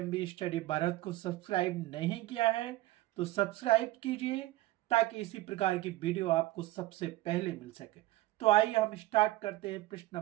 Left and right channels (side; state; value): left; quieter; 17.3 dB